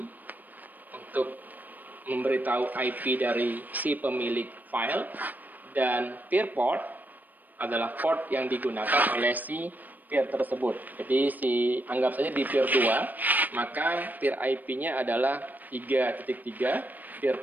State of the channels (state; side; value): late; left; 0.086 ms